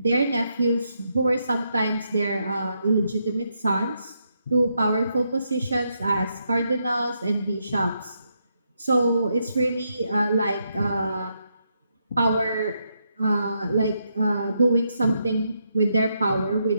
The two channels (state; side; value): inverted; both; correlation -0.80